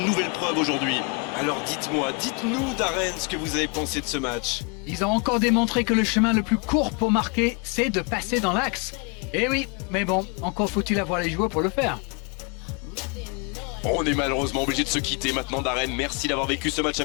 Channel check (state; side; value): quieter; right; 33.5 dB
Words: nouvelle preuve aujourd'hui. Alors dites-nous Darren ce que vous avez pensé de ce match. Ils ont encore démontré que le chemin le plus court pour marquer, c'est de passer dans l'axe. Eh oui, mais bon, encore faut-il avoir les joueurs pour le faire. On est malheureusement obligé de se quitter maintenant Darren. Merci d'avoir vécu ce match à